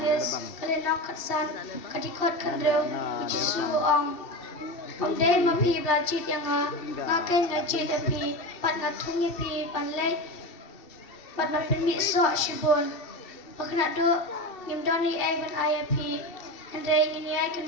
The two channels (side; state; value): right; late; 2.7 ms